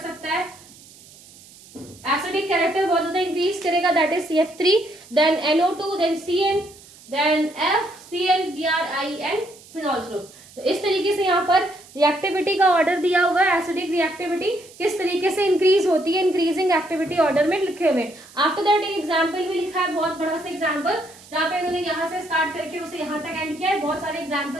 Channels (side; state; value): right; noise; hiss, 22 dB below the sound